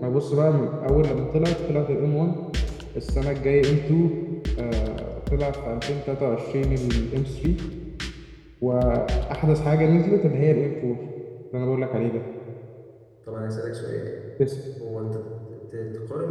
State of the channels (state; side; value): identical; both; correlation 1.00